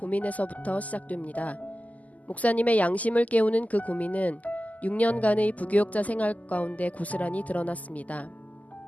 시작됩니다. 목사님의 양심을 깨우는 그 고민은 6년간의 부교역자 생활 가운데 고스란히 드러났습니다.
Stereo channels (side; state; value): right; late; 0.076 ms